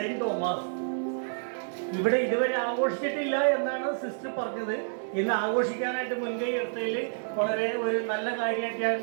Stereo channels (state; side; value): silent; left; digital silence